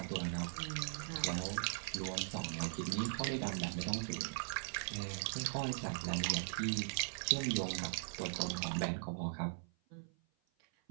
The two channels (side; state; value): left; silent; 51 dB below the other